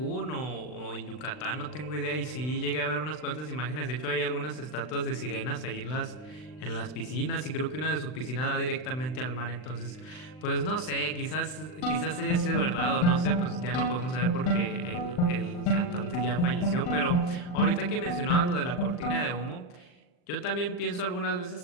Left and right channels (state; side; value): late; right; 39 ms